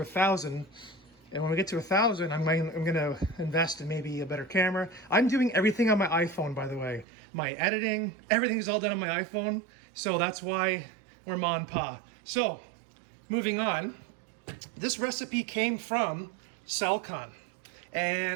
And when we get to 1,000, I'm going to invest in maybe a better camera. I'm doing everything on my iPhone, by the way. My editing, everything is all done on my iPhone. So that's why we're ma and pa. So moving on, this recipe came from Saltwater.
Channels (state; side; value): drops out; left; at 7.1 s